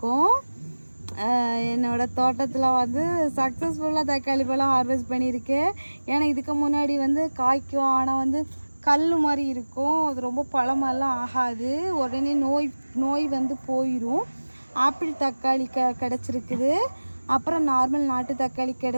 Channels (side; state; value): both; inverted; correlation -1.00